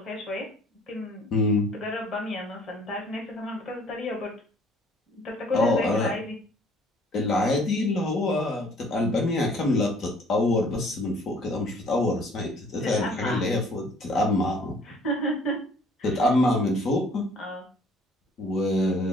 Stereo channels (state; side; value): normal; both; correlation 0.56